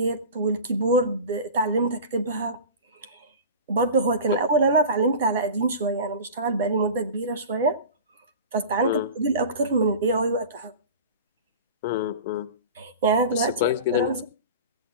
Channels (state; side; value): inverted; both; correlation -0.33